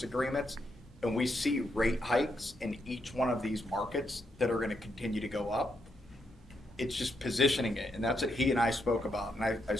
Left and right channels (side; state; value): both; normal; correlation 0.80